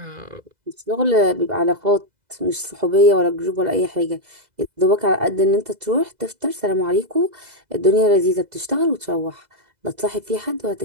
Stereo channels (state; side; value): late; left; 2.0 ms